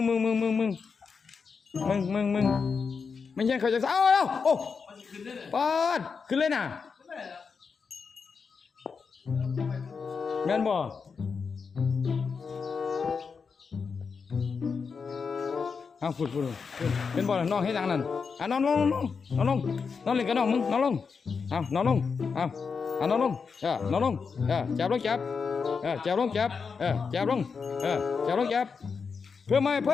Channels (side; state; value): right; quieter; 5.5 dB